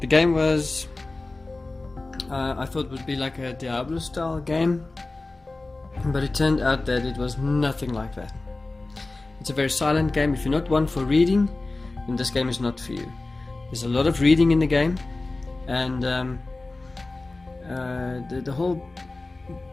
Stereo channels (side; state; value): right; quieter; 3.2 dB